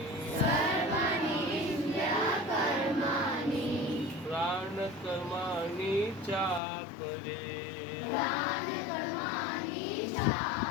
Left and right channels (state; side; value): drops out; right; at 6.6 s